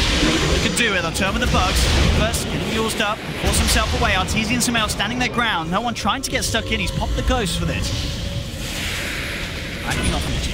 can do it, they'll turn with the bugs. First, getting used up, force himself away. Arteezy and Samael standing their ground. No one trying to get stuck in. He's popped the ghost for this. Backing off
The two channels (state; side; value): identical; both; correlation 1.00